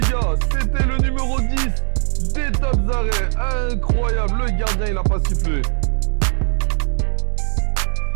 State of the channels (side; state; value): left; silent; digital silence